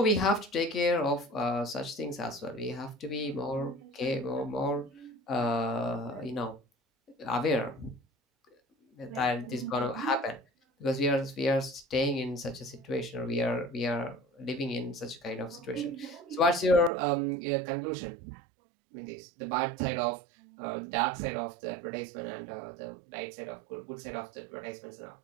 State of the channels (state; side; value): drops out; left; at 16.9 s